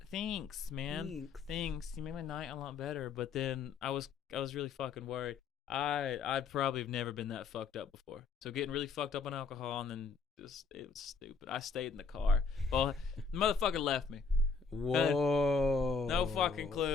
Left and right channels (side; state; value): right; quieter; 4.9 dB